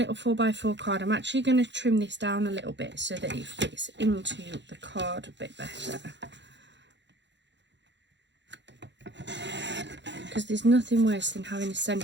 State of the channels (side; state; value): left; late; 0.52 ms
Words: 4x4 card, I'm actually going to trim this down a little bit so that it fits into the card a bit better. Because there's nothing worse than having a